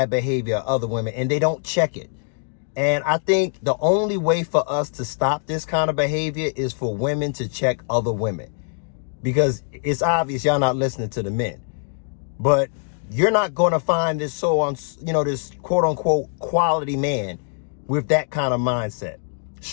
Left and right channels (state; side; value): silent; right; 59 dB below the other